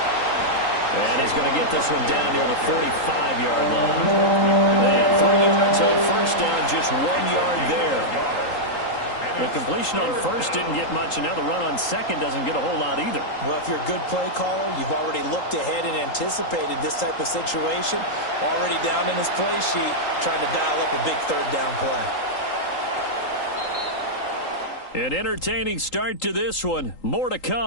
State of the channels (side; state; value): right; late; 3.8 ms